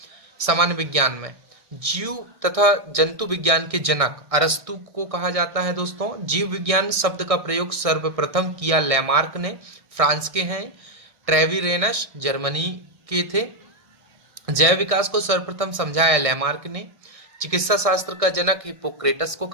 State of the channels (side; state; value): left; late; 1.6 ms